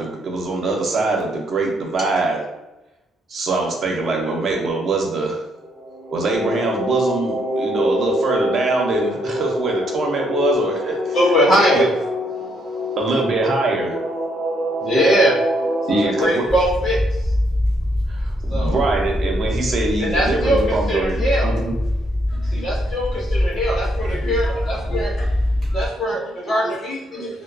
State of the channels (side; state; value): both; normal; correlation 0.73